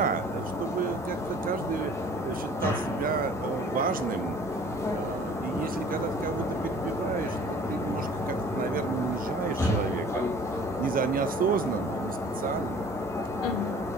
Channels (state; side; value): normal; both; correlation 0.50